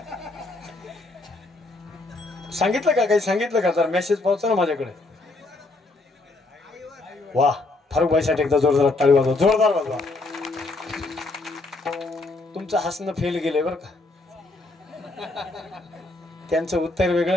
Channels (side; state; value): right; quieter; 3.1 dB